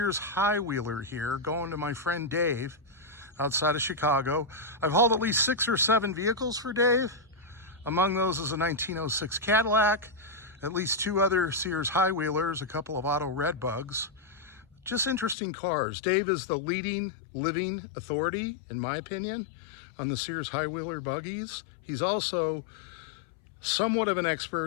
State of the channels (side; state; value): right; drops out; at 15.4 s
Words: High Wheeler here going to my friend Dave outside of Chicago. I've hauled at least 6 or 7 vehicles for Dave. Among those is a 1906 Cadillac, at least 2 other Sears High Wheelers, a couple of auto red bugs. Just interesting cars. Dave is the leading living authority, in my opinion, on the Sears High Wheeler buggies. He's also somewhat of an